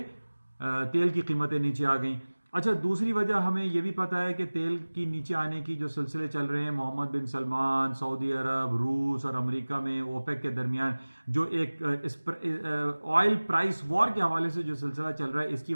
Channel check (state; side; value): inverted; both; correlation -1.00